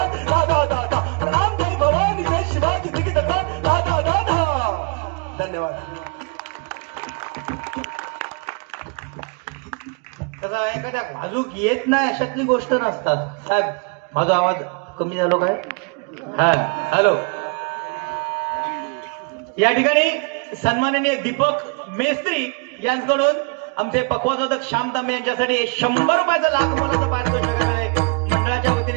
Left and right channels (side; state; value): left; quieter; 33.0 dB